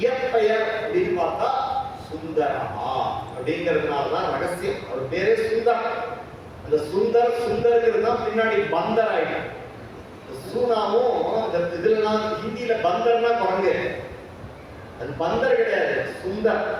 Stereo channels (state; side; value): identical; both; correlation 1.00